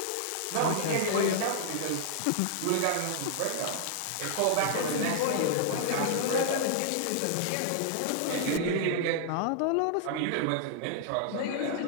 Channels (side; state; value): both; different; correlation -0.01